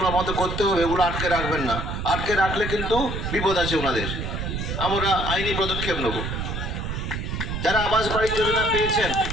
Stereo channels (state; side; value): noise; right; rumble, 4 dB below the sound